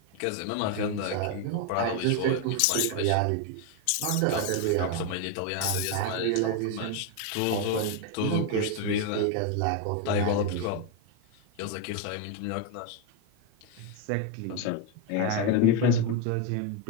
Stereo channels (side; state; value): both; different; correlation 0.02